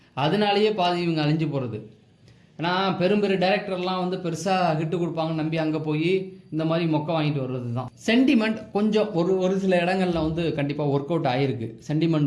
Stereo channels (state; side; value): identical; both; correlation 1.00